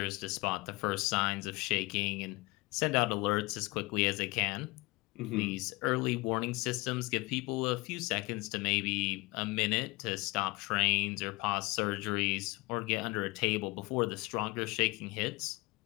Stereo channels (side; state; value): right; quieter; 23.8 dB